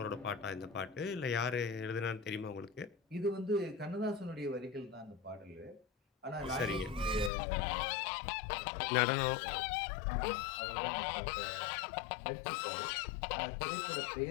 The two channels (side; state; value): right; drops out; at 7.3 s